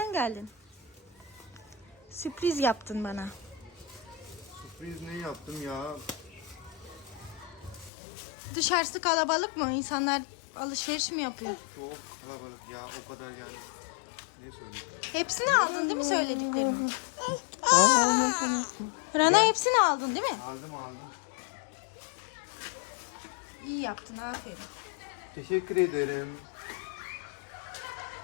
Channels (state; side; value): drops out; right; at 7.9 s